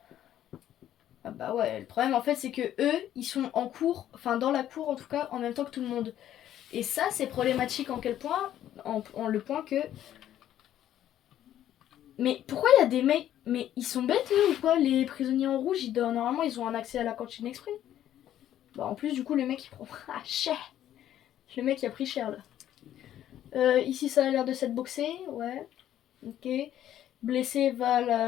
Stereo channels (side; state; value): right; quieter; 11.7 dB